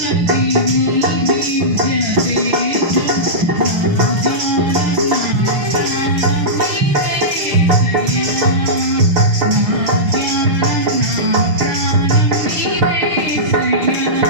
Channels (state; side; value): late; left; 6.9 ms